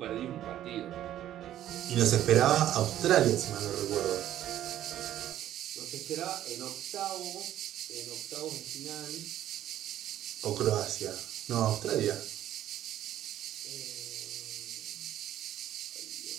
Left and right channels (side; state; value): left; quieter; 12.3 dB